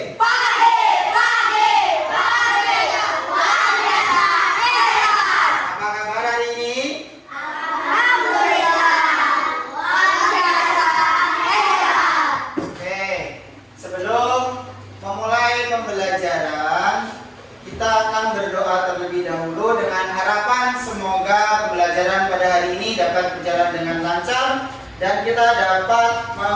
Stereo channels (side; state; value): both; identical; correlation 1.00